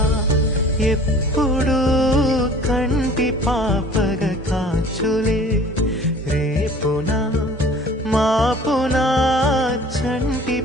ఎప్పుడు కంటి పాపగ కాచులే రేపునా మాపునా చంటి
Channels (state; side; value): normal; both; correlation 0.47